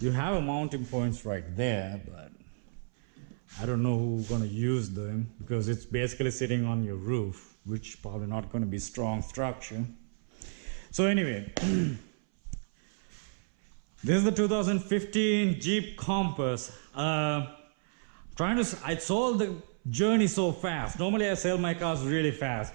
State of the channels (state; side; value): silent; left; 57 dB below the other